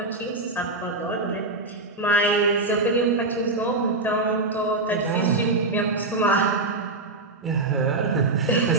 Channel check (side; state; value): left; quieter; 3.1 dB